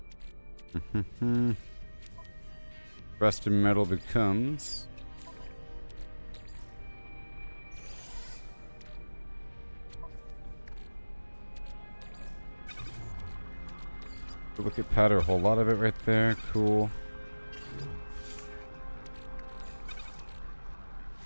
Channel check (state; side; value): inverted; both; correlation -1.00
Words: Rusted metal becomes. Look at powder, a whole lot of it right there. Cool.